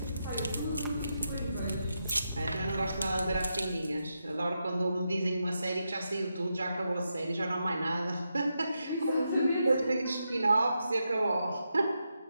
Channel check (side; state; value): both; inverted; correlation -0.85